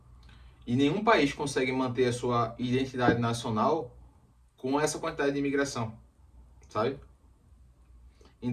E nenhum país consegue manter a sua identidade nacional com essa quantidade de imigração, sabe?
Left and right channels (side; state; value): both; identical; correlation 1.00